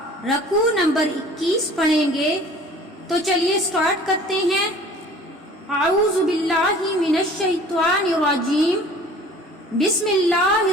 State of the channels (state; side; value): normal; both; correlation 0.48